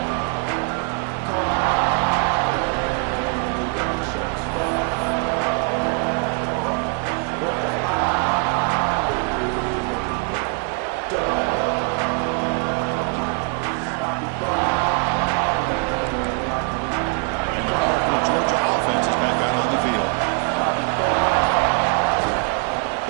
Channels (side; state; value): left; quieter; 37.1 dB